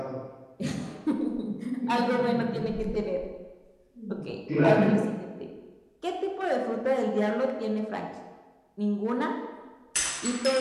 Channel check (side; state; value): both; identical; correlation 1.00